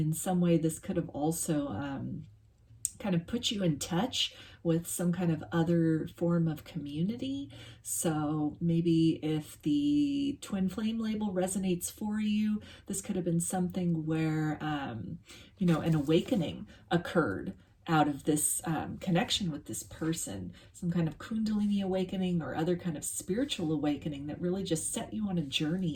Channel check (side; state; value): both; identical; correlation 1.00